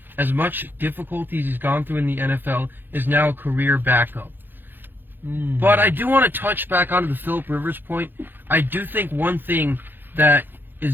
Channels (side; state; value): left; late; 0.097 ms